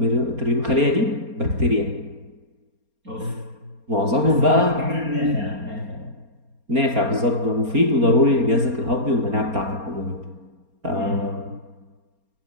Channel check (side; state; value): left; late; 4.3 ms